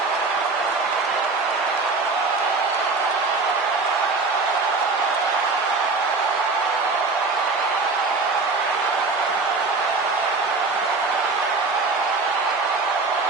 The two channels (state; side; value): quieter; left; 4.0 dB